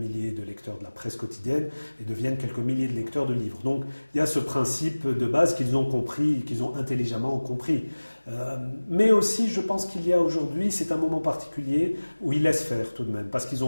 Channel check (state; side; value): inverted; both; correlation -1.00